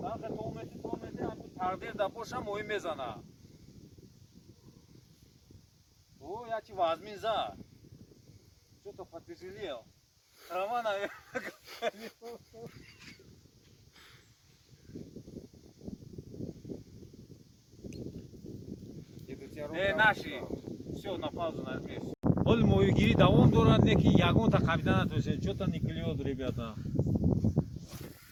آخه تو میتی همین تقدیر دا باشه موی میزنه. او یا چی وازمین زا. Что-то потяжелел. Трава, наверное, наши. Все, на паузу нажми. Оль мою гири давом дорад неки ягон та капитана то есть что-то не клюет, ребята.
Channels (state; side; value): identical; both; correlation 1.00